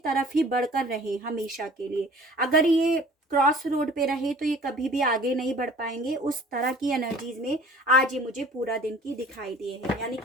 ही बढ़कर रहे हमेशा के लिए। अगर ये क्रॉस रोड पे रहे तो ये कभी भी आगे नहीं बढ़ पाएंगे। उस तरह की एनर्जीज में आज ये मुझे पूरा दिन की दिखाई दिए हैं, यानी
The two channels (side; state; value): both; normal; correlation 0.49